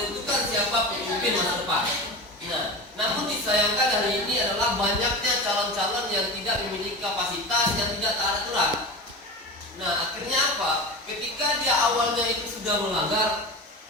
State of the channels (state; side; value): normal; both; correlation 0.28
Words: pemimpin masa depan. Nah, namun disayangkan hari ini adalah banyaknya calon-calon yang tidak memiliki kapasitas, yang tidak taat aturan. Nah, akhirnya apa? Ketika dia awalnya itu sudah melanggar,